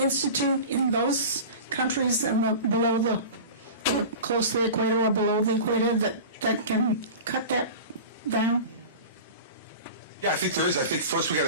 in those countries and below the close to the equator or below the equator that can cut that down? Yeah, I think there is. I think first we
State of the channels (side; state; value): both; inverted; correlation -0.34